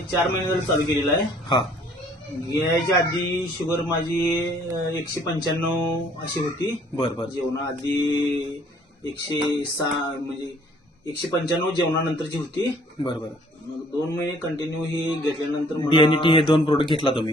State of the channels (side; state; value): both; normal; correlation 0.59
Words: 4 महिने झाले चालू केलेलं आहे. हा घ्यायच्या आधी शुगर माझी 195 अशी होती. बर बर जेवणा आधी 106 म्हणजे 195 जेवणानंतरची होती. बर बर. मग 2 महिने कंटिन्यू ही घेतल्यानंतर डीएनटी हे 2 प्रोडक्ट घेतला